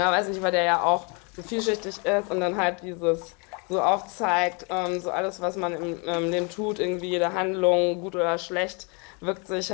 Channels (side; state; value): right; quieter; 33.2 dB